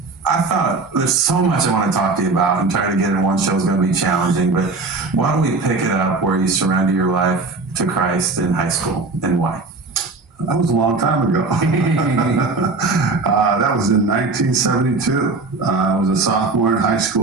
I thought there's so much I want to talk to you about, and trying to get in one show is going to be challenging, but why don't we pick it up where you surrender your life to Christ in high school, and why? That was a long time ago. That was in 1972. I was a sophomore in high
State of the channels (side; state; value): left; quieter; 3.8 dB